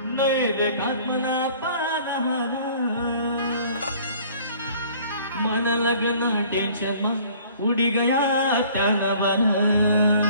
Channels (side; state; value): both; inverted; correlation -0.53